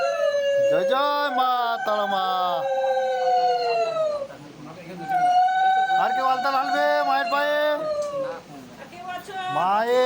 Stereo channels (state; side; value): identical; both; correlation 1.00